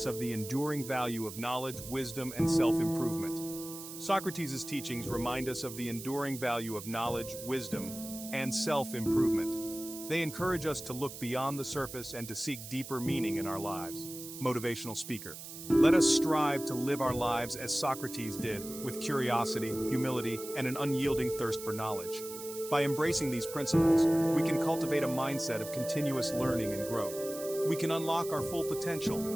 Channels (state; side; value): noise; right; hiss, 11 dB below the sound